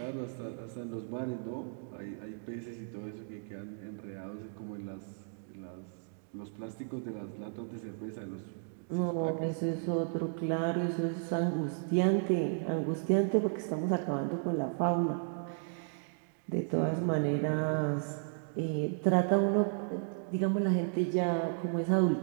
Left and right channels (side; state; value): left; silent; digital silence